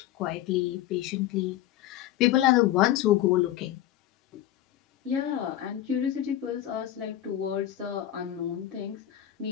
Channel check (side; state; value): right; quieter; 12.7 dB